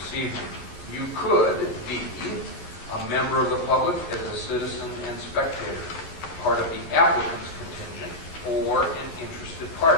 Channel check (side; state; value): right; late; 11 ms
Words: evening. You could be a member of the public as a citizen and spectator, part of the applicant's contingent, or an interested